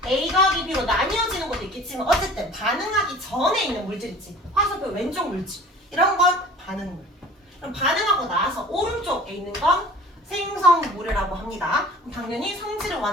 A 더하기 B로 나뉘어지는 것도 있겠지만 어쨌든 반응하기 전에 있는 물질 있지. 화살표 왼쪽 물질 이런 건 반응물. 그럼 반응하고 나서 오른쪽에 있는 건 생성물이라고 합니다. 그럼 당연히 성질은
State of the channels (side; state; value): both; normal; correlation 0.45